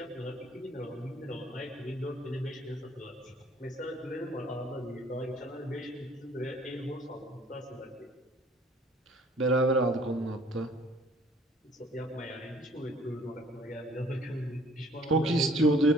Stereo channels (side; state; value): both; normal; correlation 0.57